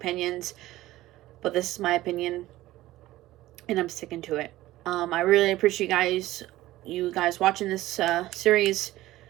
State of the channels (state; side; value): quieter; left; 16.3 dB